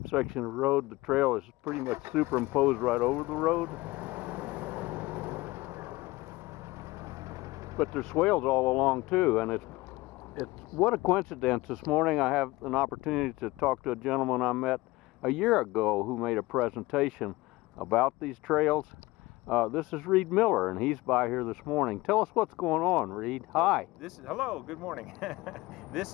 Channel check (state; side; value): quieter; right; 20.5 dB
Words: section of road, the trail is pretty much superimposed right over the road. But there's swales all along too, and it's what a coincidence. This morning I have an opportunity to talk to a gentleman I met a year ago who made a presentation about these trails. This is Reed Miller, and he's by here this morning. Tell us what's going on, Reed. Hi. Hello, good morning.